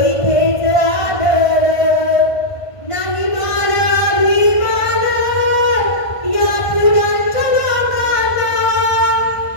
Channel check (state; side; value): late; right; 1.5 ms